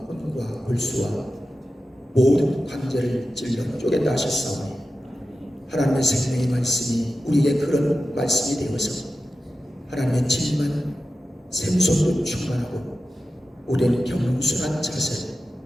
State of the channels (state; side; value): normal; both; correlation 0.93